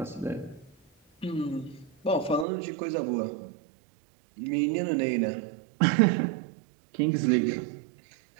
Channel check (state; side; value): drops out; left; at 2.5 s